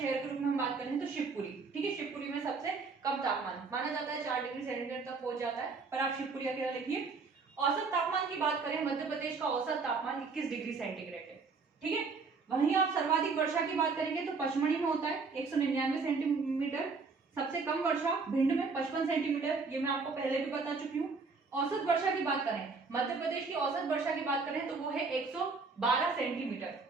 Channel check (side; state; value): left; quieter; 4.5 dB